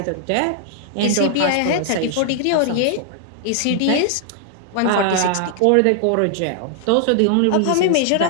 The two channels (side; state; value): both; different; correlation 0.00